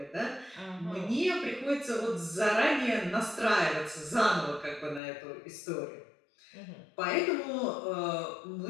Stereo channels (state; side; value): drops out; right; at 5.0 s